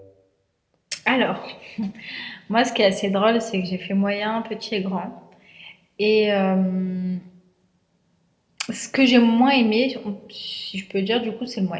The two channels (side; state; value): both; identical; correlation 1.00